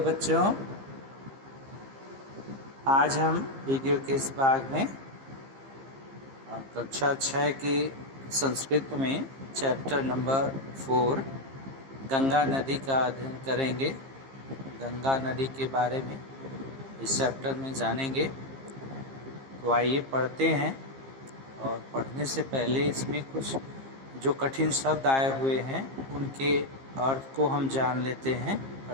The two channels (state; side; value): late; left; 15 ms